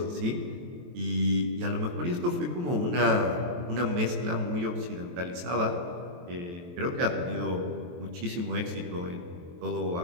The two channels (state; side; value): late; left; 23 ms